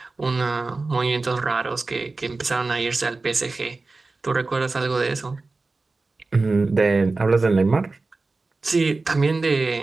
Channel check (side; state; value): left; quieter; 3.6 dB